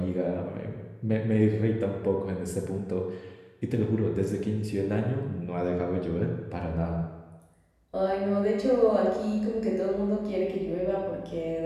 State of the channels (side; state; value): both; identical; correlation 1.00